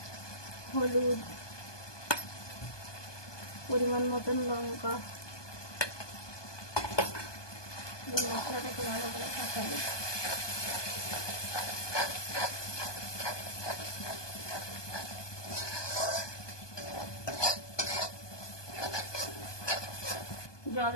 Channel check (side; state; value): right; late; 1.2 ms